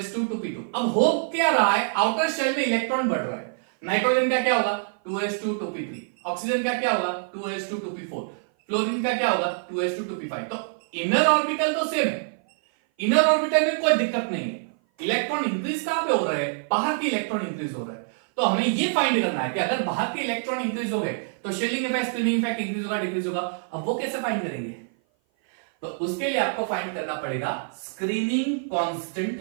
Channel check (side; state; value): left; silent; 56 dB below the other